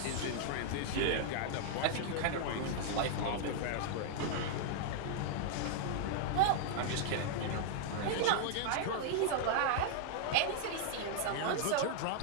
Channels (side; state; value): both; different; correlation -0.01